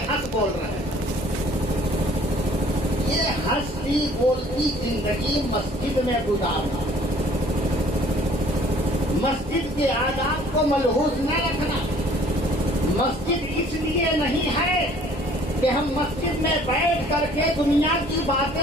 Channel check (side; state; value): both; normal; correlation 0.55